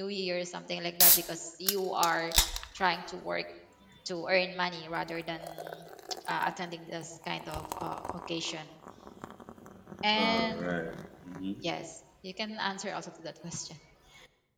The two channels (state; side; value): identical; both; correlation 1.00